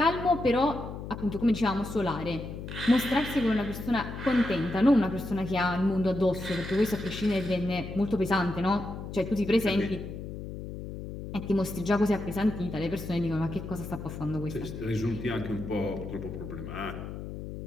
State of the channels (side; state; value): left; noise; hum, 9 dB below the sound